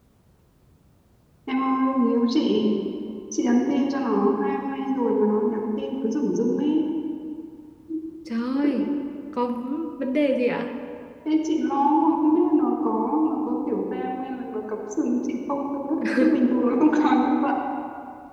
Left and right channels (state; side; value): identical; both; correlation 1.00